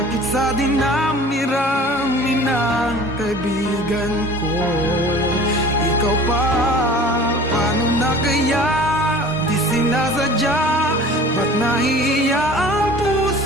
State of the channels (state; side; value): normal; both; correlation 0.44